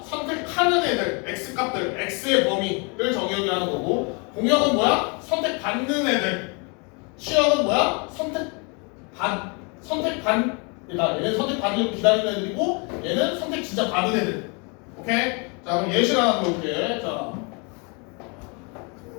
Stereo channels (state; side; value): quieter; right; 32.9 dB